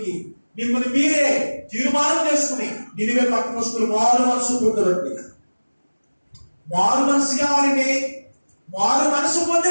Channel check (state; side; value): inverted; both; correlation -1.00